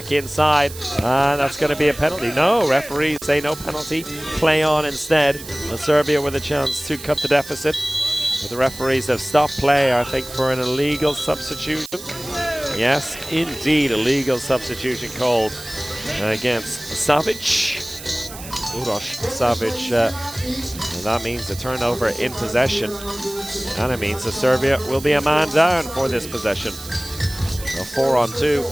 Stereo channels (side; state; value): right; noise; hiss, 14 dB below the sound